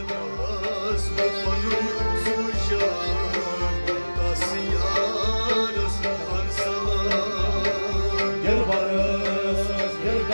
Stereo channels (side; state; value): both; inverted; correlation -1.00